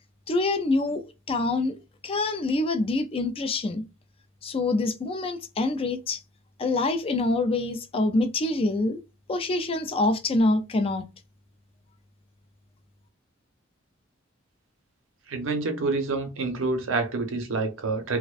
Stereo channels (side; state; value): both; normal; correlation 0.49